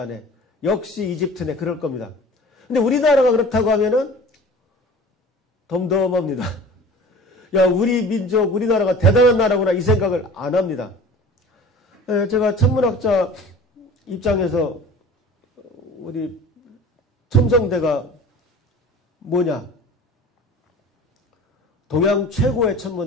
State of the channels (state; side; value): normal; both; correlation 0.42